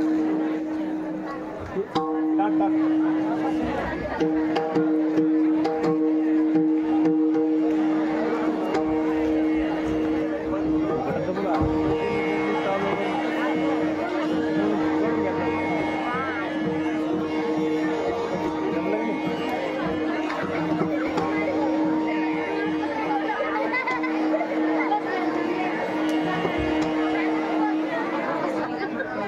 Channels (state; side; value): identical; both; correlation 1.00